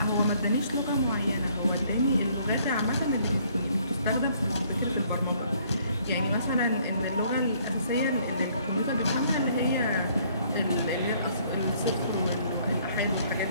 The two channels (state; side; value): inverted; both; correlation -0.63